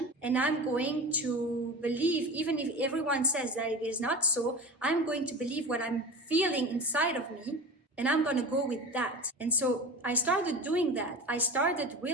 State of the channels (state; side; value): normal; both; correlation 0.32